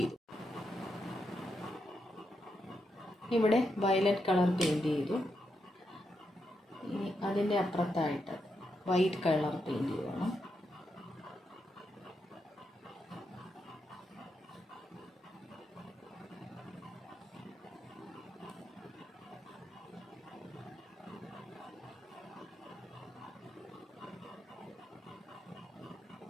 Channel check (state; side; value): normal; both; correlation 0.83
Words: ഇവിടെ വയലറ്റ് കളർ പെയിൻറ് ചെയ്തു. ഇനി അതിൻ്റെ അപ്പുറത്തായിട്ട് വൈറ്റ് കളർ പെയിൻറ് ചെയ്യണം.